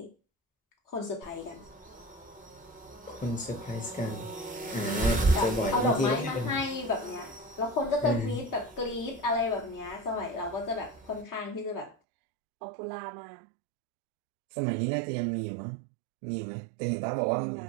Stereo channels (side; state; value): left; drops out; at 12.0 s